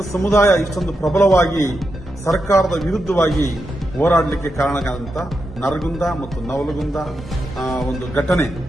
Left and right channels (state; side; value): normal; both; correlation 0.86